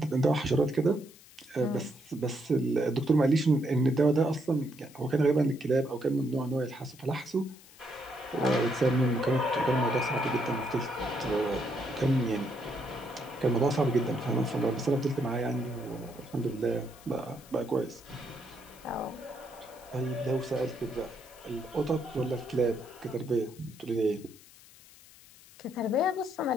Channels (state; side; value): noise; left; hiss, 22 dB below the sound